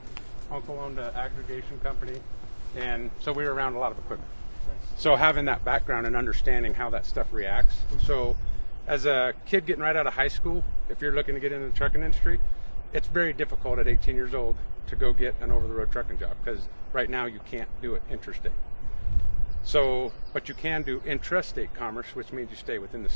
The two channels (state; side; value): inverted; both; correlation -1.00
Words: uncle owned an aggregation company, and so we were around a lot of equipment. So having that background and understanding how that stuff reacts. So as a kid getting right out of high school, if you're looking to get into the trucking industry, it's very difficult at 18 years old to go get an over-the-road trucking job, because right now you can't do it interstate. So, but you can do intrastate commerce, which means you stay within the